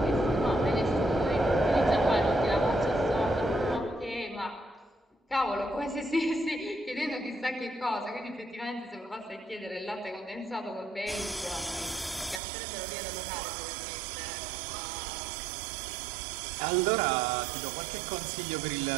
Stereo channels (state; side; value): drops out; left; at 12.4 s